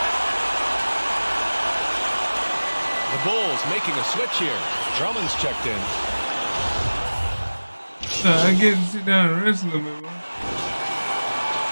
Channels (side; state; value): both; inverted; correlation -1.00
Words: The Bulls making a switch here. Drummond's checked in. I get to sit down and rest a little bit, man.